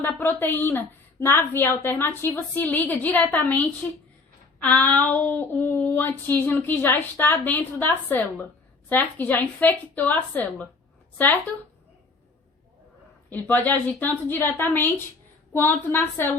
a proteína na via alternativa se liga diretamente ao antígeno que já está dentro da célula, certo? Que já infectou a célula, certo? Ele pode agir tanto diretamente quanto na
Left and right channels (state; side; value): quieter; right; 3.9 dB